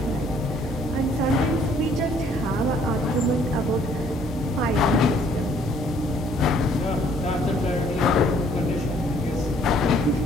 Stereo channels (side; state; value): both; normal; correlation 0.62